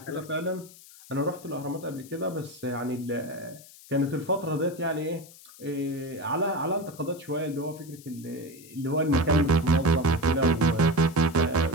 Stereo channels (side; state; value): left; noise; hiss, 20 dB below the sound